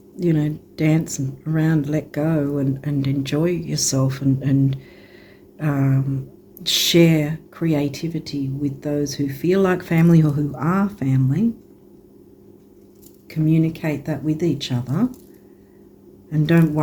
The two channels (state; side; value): identical; both; correlation 1.00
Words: you know, dance around, let go and enjoy yourself and share creativity with those who feel like family or who are family. Communicate that with each other. And don't